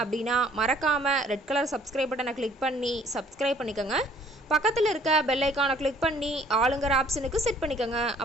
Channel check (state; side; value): normal; both; correlation 0.58